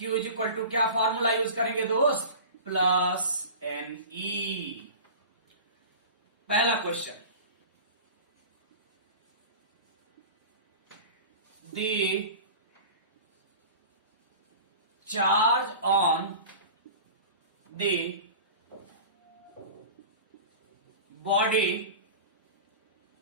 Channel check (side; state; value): both; inverted; correlation -0.36